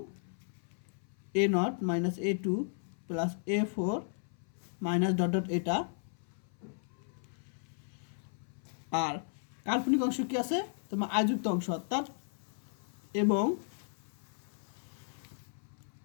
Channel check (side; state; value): right; silent; 54 dB below the other